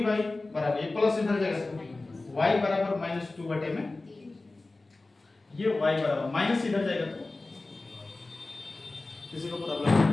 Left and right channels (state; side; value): quieter; right; 3.2 dB